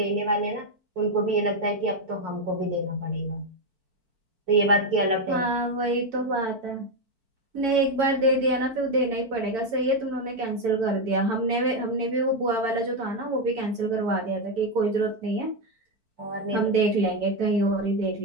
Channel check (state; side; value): late; left; 4.5 ms